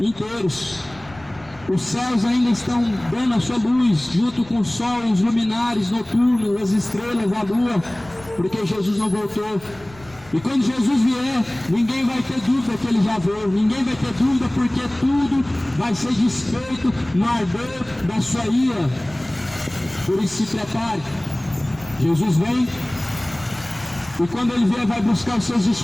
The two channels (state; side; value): noise; left; rumble, 23 dB below the sound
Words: inteiros. Os céus ainda estão dando a sua luz, junto com o sol, os luminares noturnos, as estrelas, a lua, porque Jesus não voltou. E quando Jesus vier, ninguém vai ter dúvida que ele já veio, ninguém vai ter dúvida, porque tudo vai ser desfeito no ardor da sua ira. Por isso se prepare, Jesus vem, e quando ele vier vai buscar os seus